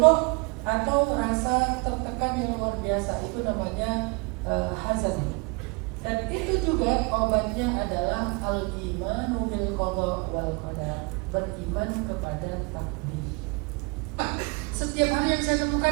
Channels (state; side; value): quieter; left; 29.3 dB